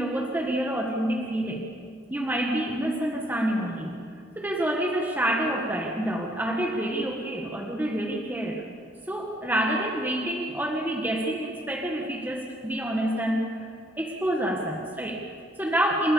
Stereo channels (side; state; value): both; normal; correlation 0.66